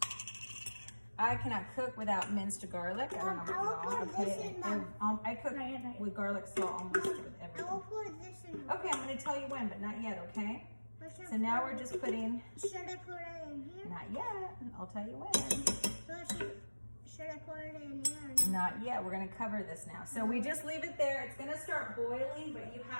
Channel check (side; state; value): both; inverted; correlation -1.00